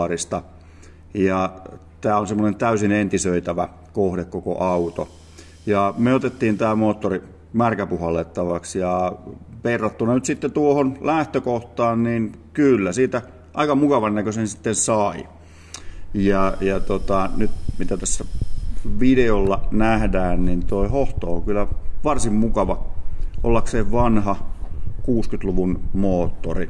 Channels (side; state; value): both; identical; correlation 1.00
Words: Ja tämä on semmoinen täysin entisöitävä kohde koko auto. Ja me otettiin tämä moottori märkäpuhallettavaksi ja verrattuna nyt sitten tuohon lähtökohtaan, niin kyllä siitä aika mukavan näköisen sitten sai. Ja nyt mitä tässä videolla nähdään, niin toi hohto on kyllä varsin mukava ollakseen vanha 60-luvun